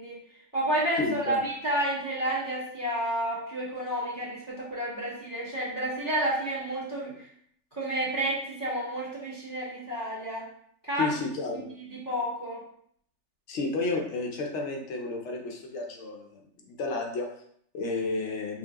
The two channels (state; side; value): late; right; 3.4 ms